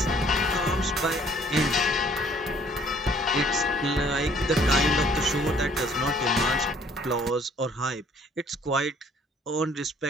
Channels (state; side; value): normal; both; correlation 0.59